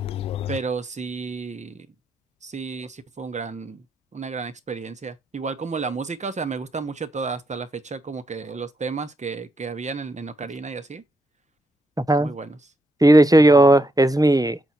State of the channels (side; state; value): both; normal; correlation 0.79